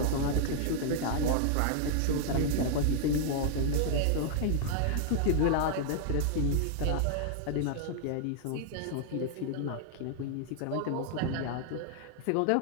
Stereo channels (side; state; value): both; different; correlation -0.01